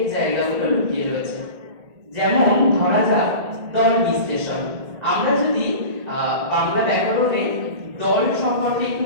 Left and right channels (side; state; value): left; late; 1.8 ms